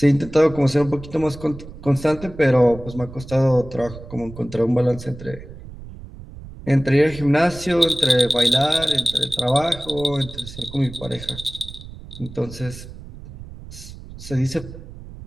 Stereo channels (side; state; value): right; noise; rumble, 15 dB below the sound